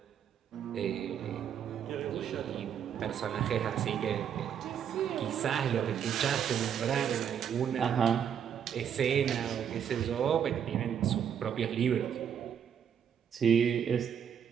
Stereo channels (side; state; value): left; quieter; 8.4 dB